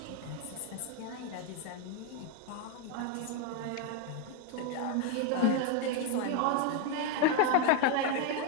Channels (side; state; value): both; different; correlation 0.01